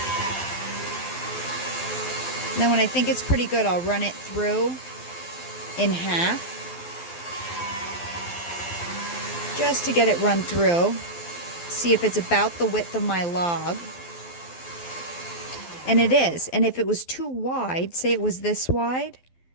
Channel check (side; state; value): right; late; 12 ms